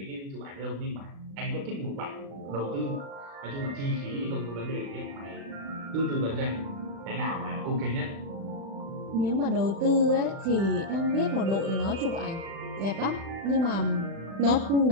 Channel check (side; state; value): left; late; 36 ms